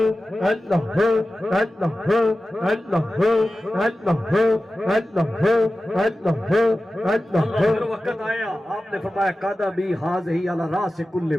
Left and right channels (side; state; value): both; normal; correlation 0.94